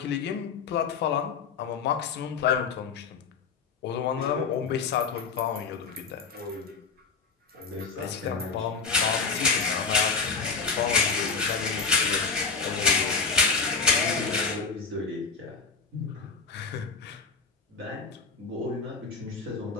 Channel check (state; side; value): quieter; right; 4.9 dB